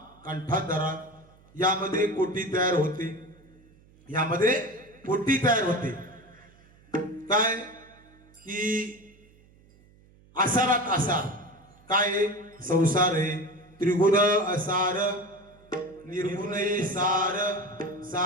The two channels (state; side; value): noise; right; hum, 28 dB below the sound